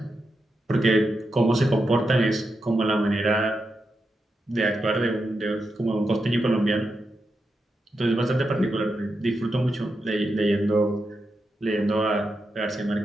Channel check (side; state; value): both; normal; correlation 0.86